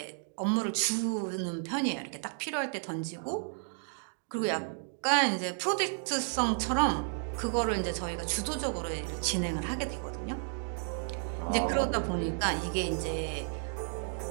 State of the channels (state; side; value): silent; left; 56 dB below the other